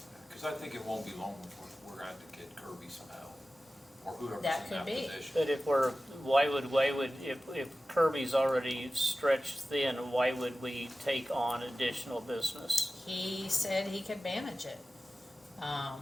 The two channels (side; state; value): both; normal; correlation 0.95